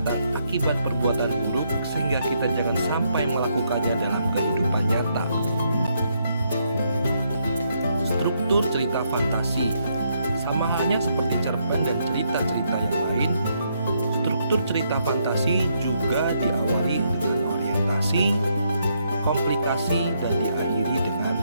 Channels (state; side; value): inverted; both; correlation -0.75